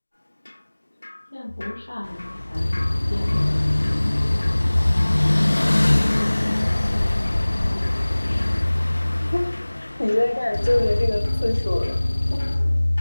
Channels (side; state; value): both; inverted; correlation -1.00